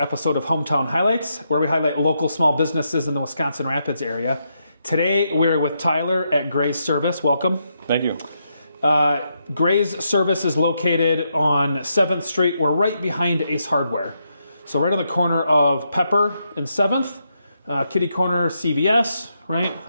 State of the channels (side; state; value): both; inverted; correlation -0.81